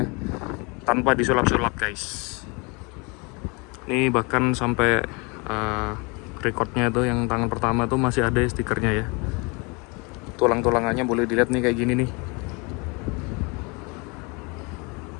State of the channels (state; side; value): quieter; right; 29.8 dB